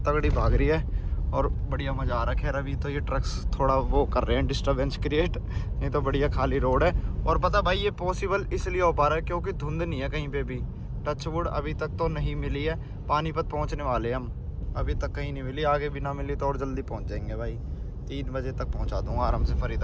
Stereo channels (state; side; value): identical; both; correlation 1.00